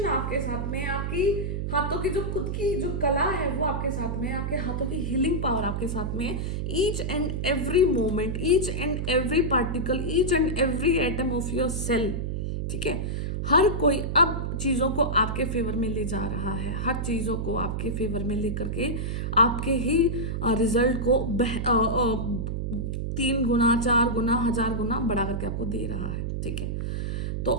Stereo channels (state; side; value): noise; right; hum, 2 dB below the sound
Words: आपके साथ में, आपकी हाथों की जो खुद की जो कला है वो आपके साथ में, आपके हाथों की हीलिंग पावर आपके साथ में है। Each and every moment, each and every particle, each and every atom of your cell, ठीक है। हर कोई अब चीज़ों को आपके फेवर में ले जा रहा है, हर चीज़ों को आपके फेवर में लेकर के आपके ही रिजल्ट को 3 गुना 4 गुना 1000 गुना बढ़ा करके आपको दे रहा है, ठीक है। तो